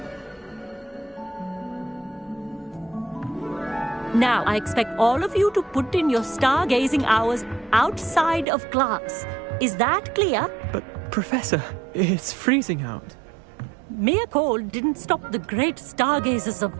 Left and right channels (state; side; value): drops out; left; at 8.5 s